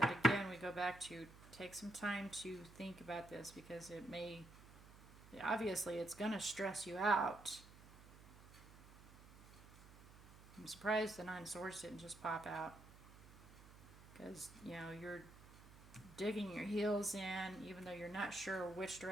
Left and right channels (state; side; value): noise; right; hum, 20 dB below the sound